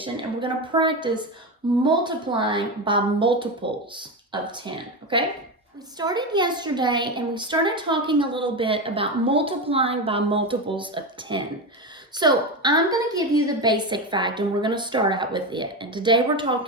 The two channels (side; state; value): both; normal; correlation 0.17